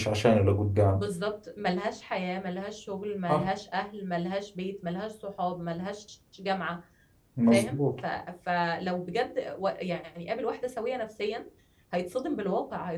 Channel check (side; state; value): both; identical; correlation 1.00